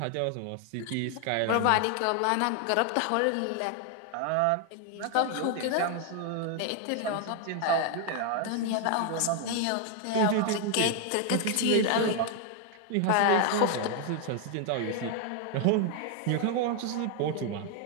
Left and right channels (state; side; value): different; both; correlation 0.00